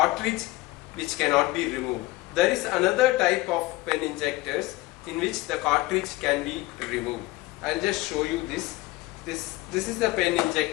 which cannot be removed. There is another type of pen injectors in which the cartridge can be removed. I will just show you this. This is the pen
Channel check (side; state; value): right; quieter; 20.1 dB